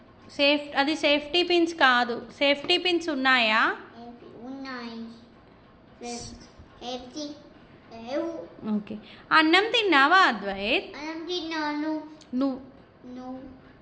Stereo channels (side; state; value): both; identical; correlation 1.00